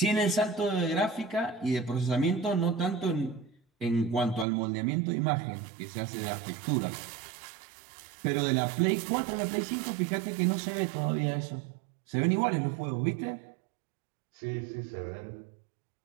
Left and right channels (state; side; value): drops out; left; at 4.5 s